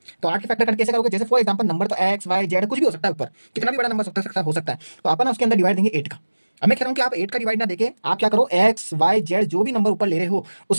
तो 8 के फैक्टर करके कैसे करोगे? जैसे फॉर एग्जाम्पल नंबर तो एक्स वाई जेड कुछ भी हो सकता है, ऊपर कितना भी बड़ा नंबर हो सकता है। तो अपन उसके अंदर डिवाइड देंगे 8 का। अब मैं कह रहा हूँ कि आप 8 का डिवाइड ना देके आप क्या करो, एक्स वाई जेड जो भी नंबर ऊपर ले रहे हो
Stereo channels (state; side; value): inverted; both; correlation -1.00